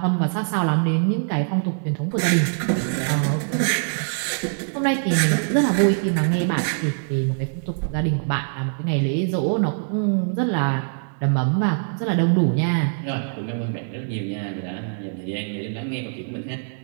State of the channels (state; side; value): silent; left; digital silence